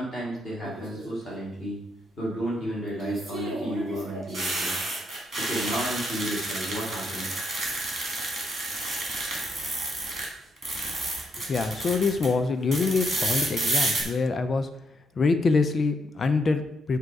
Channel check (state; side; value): normal; both; correlation 0.77